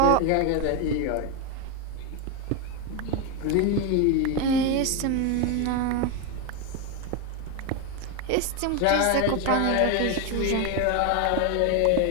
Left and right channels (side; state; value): both; different; correlation 0.02